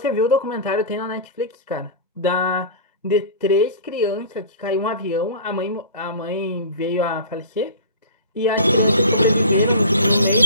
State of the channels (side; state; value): both; inverted; correlation -0.36